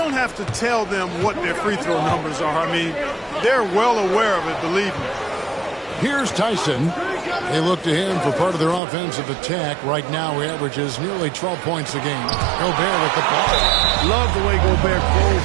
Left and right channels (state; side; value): drops out; left; at 8.8 s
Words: have to tell them what their free throw numbers are. I mean, they're well aware of it, believe me. Here's Tyson. They look to him for part of their offensive attack. Right now, he averages nearly 12 points a game. Gobert with the ball. Love the way Gobert